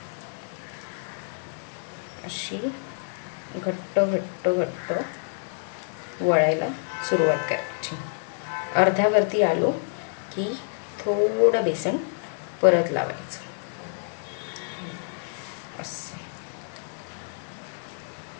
अशी घट्ट वळायला सुरुवात करायची. अर्ध्यावरती आलो की थोडं बेसन परत लावायचं.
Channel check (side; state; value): right; silent; digital silence